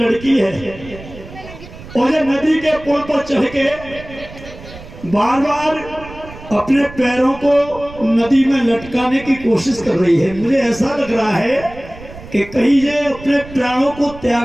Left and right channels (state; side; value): noise; right; rumble, 16 dB below the sound